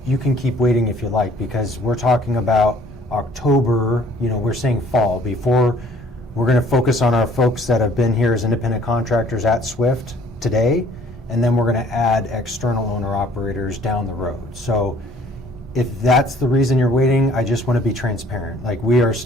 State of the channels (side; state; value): both; normal; correlation 0.57